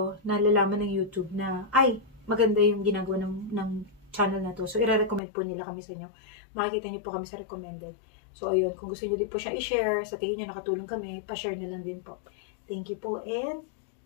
nalalaman ng YouTube na, maganda yung ginagawa ng channel na to. So, i-recommend po nila kami sa inyo. Makikita niyo po kami sa recommended. So, ayun. Kung gusto niyo din po siya i-share, sa tingin niyo nakatulong kami, pa-share na lang din po. Thank you po. And,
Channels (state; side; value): drops out; right; at 5.2 s